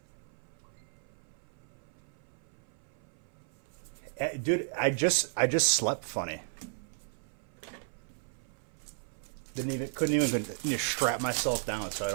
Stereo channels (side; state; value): left; silent; 55 dB below the other